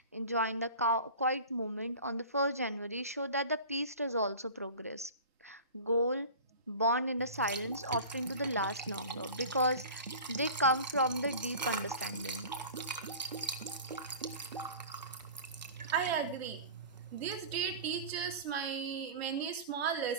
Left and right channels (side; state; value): both; inverted; correlation -0.38